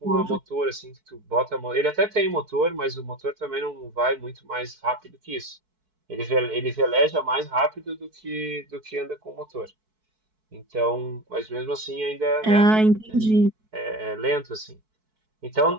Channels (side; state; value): left; late; 4.6 ms